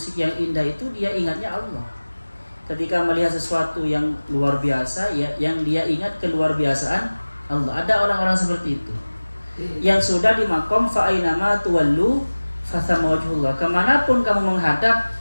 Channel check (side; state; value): both; inverted; correlation -1.00